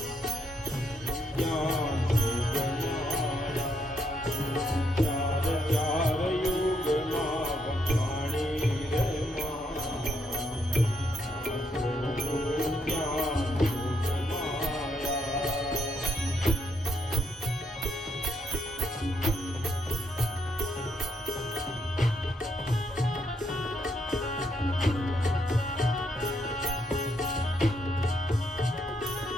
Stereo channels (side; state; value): both; normal; correlation 0.76